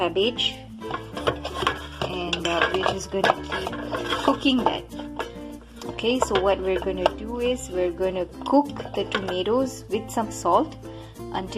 and we're just going to keep cooking that. Okay, so what we're going to do is we're going to cook the tomatoes with some salt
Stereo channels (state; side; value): identical; both; correlation 1.00